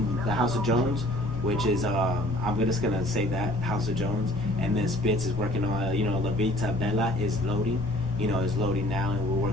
House of Jones, which is I'm just gonna say that House of Jones, and then Spitz is working on La Vita Bella is loading, is loading now, and we're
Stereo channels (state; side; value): noise; left; rumble, 15 dB below the sound